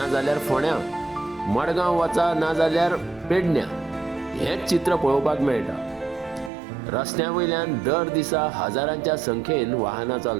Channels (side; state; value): left; drops out; at 6.5 s